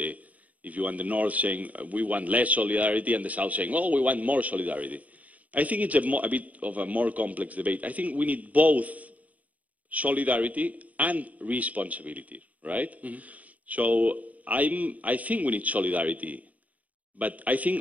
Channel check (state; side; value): late; left; 0.072 ms